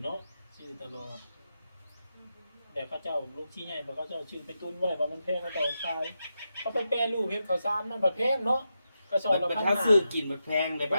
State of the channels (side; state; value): both; inverted; correlation -0.87